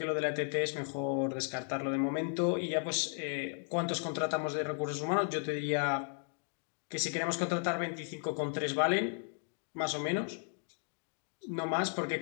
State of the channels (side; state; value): right; silent; 54 dB below the other